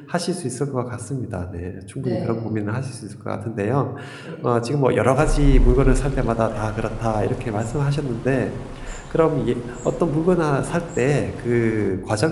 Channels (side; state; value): both; identical; correlation 1.00